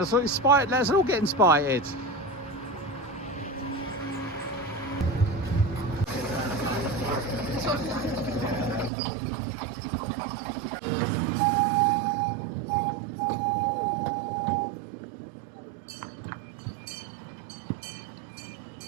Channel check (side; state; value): left; drops out; at 8.9 s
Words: all get inspired.